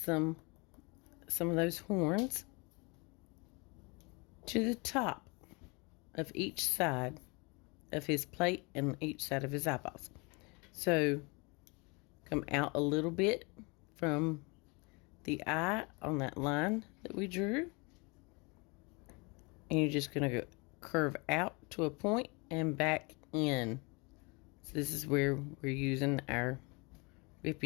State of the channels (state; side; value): quieter; right; 29.3 dB